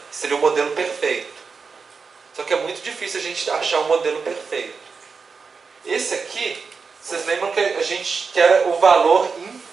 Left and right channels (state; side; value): quieter; left; 5.1 dB